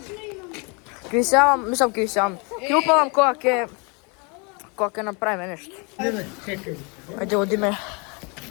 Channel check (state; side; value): quieter; right; 32.0 dB